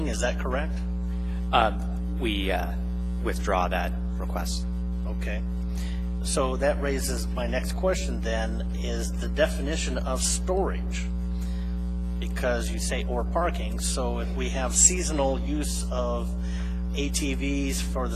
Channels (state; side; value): identical; both; correlation 1.00